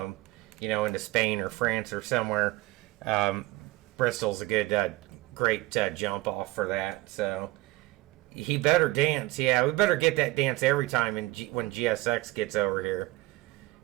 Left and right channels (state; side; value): quieter; left; 19.4 dB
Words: into Spain or France or somewhere. Bristol's a good, great jump off for that. So he better dance. Yeah, we better get that dance every time when GSX gets over here.